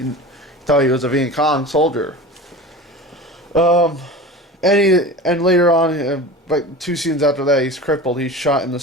thought he was a Viet Cong soldier. And later on, like 2 scenes after that, he's crippled. He's shot in the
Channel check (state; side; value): normal; both; correlation 0.33